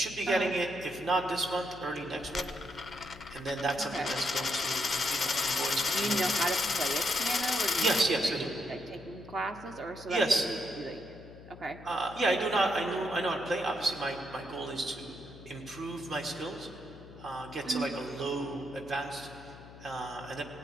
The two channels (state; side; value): noise; left; hum, 17 dB below the sound